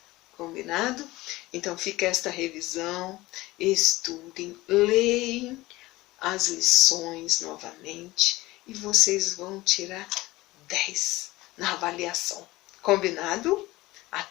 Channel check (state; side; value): quieter; right; 19.2 dB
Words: Combinado? Então, fica esta revisão. Estudem, leem as lições novamente e vocês vão tirar 10 na avaliação. Combinado?